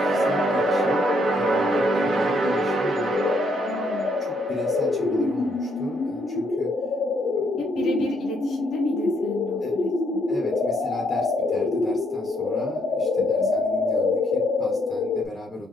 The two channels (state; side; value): normal; both; correlation 0.72